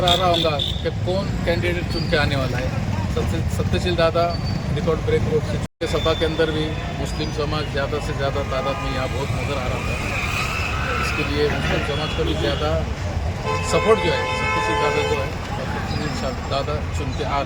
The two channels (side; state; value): both; identical; correlation 1.00